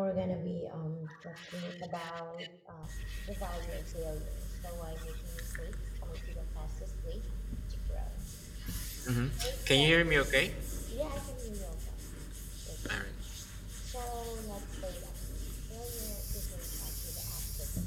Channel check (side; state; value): both; identical; correlation 1.00